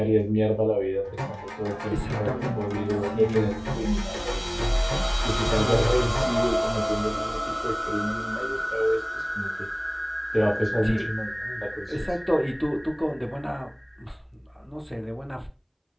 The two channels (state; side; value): identical; both; correlation 1.00